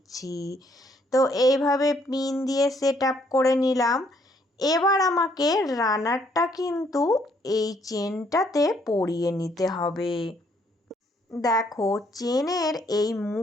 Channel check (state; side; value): normal; both; correlation 0.68